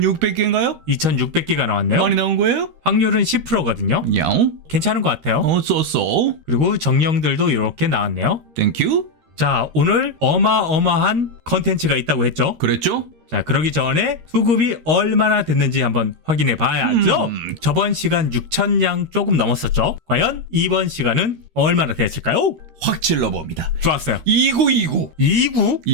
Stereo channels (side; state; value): left; late; 13 ms